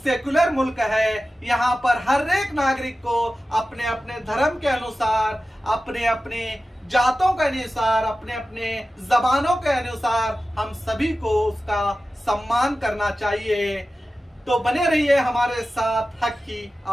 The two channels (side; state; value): both; normal; correlation 0.94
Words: मुल्क है, यहाँ पर हर एक नागरिक को अपने अपने धर्म के अनुसार, अपने अपने जातों के अनुसार, अपने अपने जबानों के अनुसार हम सभी को उसका सम्मान करना चाहिए। तो बने रहिए हमारे साथ हक की